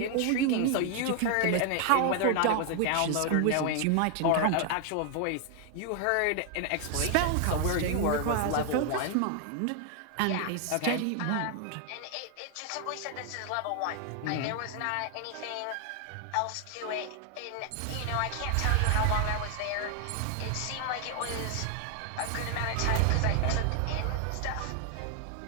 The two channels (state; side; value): different; both; correlation 0.00